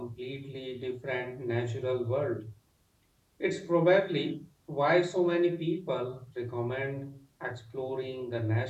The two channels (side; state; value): both; identical; correlation 1.00